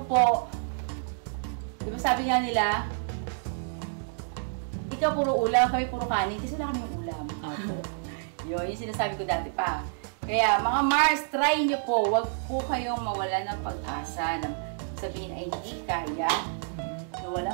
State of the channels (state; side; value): silent; left; digital silence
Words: po, di ba sabi nga nila, ikaw puro ulam, kami puro kanin, kasi wala kami ulam. Yun, yung sinasabi ko dati pa. Kaya mga Mars, try nyo po. Huwag po kayong mawala ng pag-asa. Sabihin ay hindi kaya na